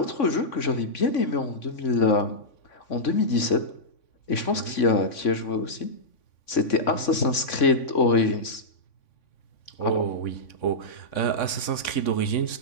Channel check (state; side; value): late; right; 3.5 ms